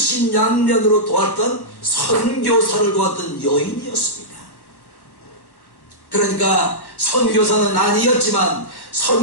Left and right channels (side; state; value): right; late; 1.1 ms